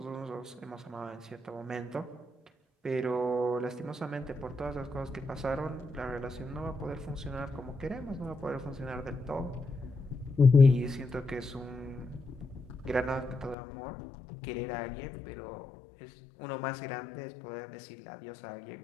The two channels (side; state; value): right; drops out; at 13.6 s